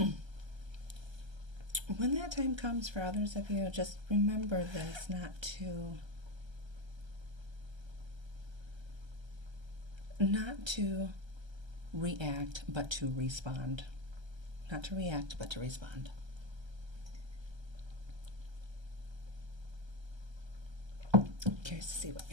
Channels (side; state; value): left; late; 1.3 ms